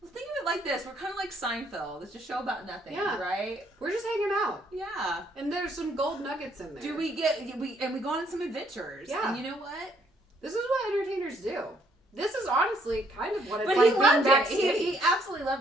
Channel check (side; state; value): both; normal; correlation 0.68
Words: well, think of it like this. We're kind of like Seinfeld. It's a show about nothing, right? We're just hanging out. Yeah. And there's some gold nuggets in there. We go on some adventures. Yeah. And you know what? This is what entertainers do. This is honestly kind of what it's But like he being loved it. backstage. He absolutely